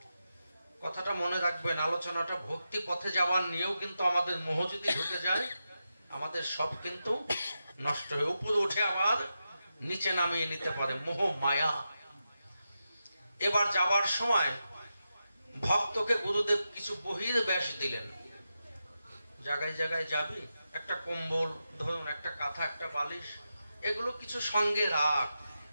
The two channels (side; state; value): both; inverted; correlation -0.89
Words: কথাটা মনে রাখবেন, আলোচনাটা ভক্তি পথে যাওয়ার নিয়েও কিন্তু আমাদের মোহ যদি ঢুকে যায়, আমাদের সব কিন্তু নষ্ট হয়ে উপরে উঠে আবার নিচে নামিয়ে নিতে পারে মোহ মায়া। এবার যাওয়ার সময় ভক্তকে গুরুদেব কিছু বহির্বেশ দিলেন। জায়গায় জায়গায় যাবি, একটা কম্বল ধরুন, একটা কাঁথা, একটা বালিশ, এগুলো কিছু সঙ্গে রাখ।